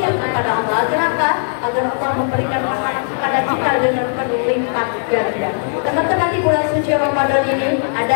kepada Allah. Agar apa? Agar Allah memberikan pahala kepada kita dengan berlipat ganda. Teman-teman, di bulan suci Ramadan ini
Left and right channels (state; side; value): silent; right; 59 dB below the other